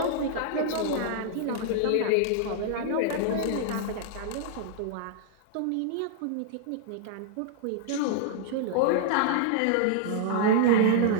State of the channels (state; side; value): different; both; correlation -0.01